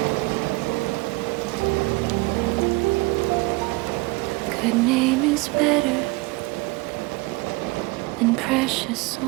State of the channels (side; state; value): left; quieter; 23.9 dB